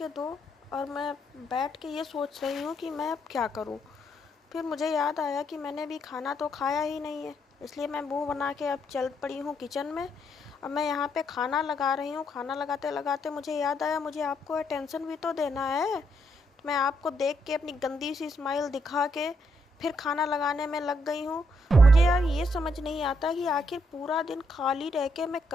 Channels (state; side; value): normal; both; correlation 0.76